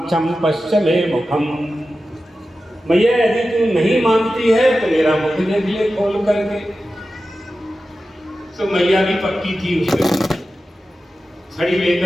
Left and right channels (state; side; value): normal; both; correlation 0.93